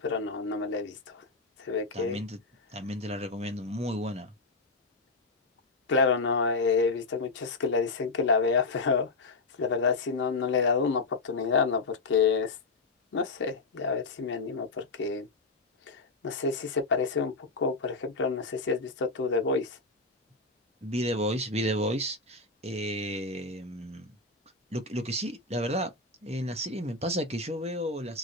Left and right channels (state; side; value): quieter; right; 3.5 dB